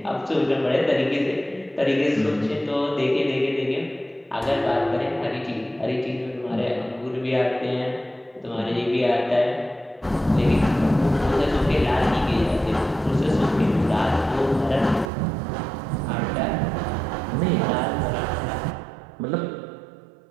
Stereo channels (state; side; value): drops out; left; at 15.1 s